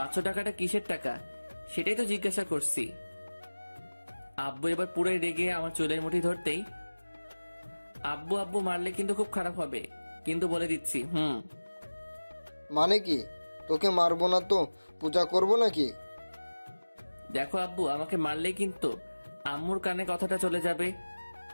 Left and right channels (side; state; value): both; inverted; correlation -1.00